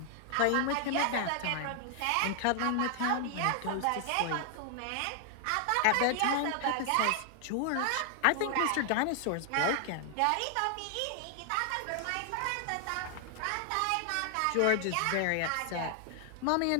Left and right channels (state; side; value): different; both; correlation 0.00